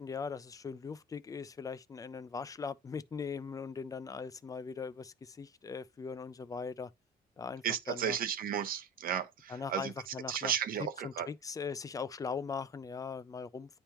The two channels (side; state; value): both; normal; correlation 0.30